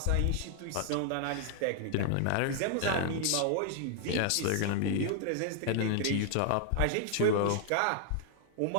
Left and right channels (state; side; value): different; both; correlation 0.00